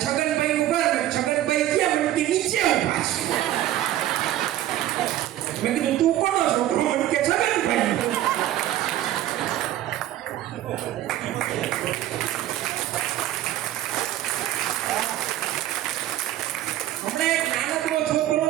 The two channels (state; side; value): quieter; left; 13.3 dB